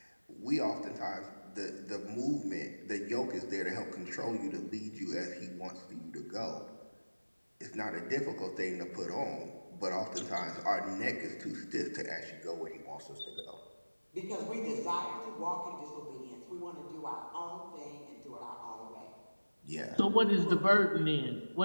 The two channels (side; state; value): both; inverted; correlation -1.00